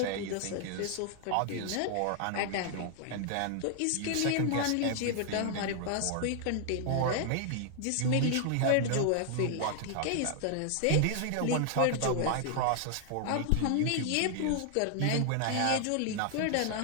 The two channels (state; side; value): different; both; correlation 0.00